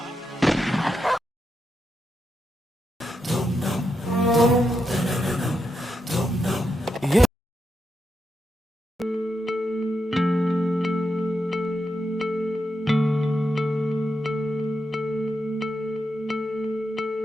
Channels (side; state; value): both; normal; correlation 0.85